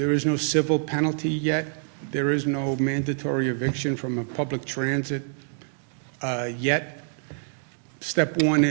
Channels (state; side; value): silent; left; 61 dB below the other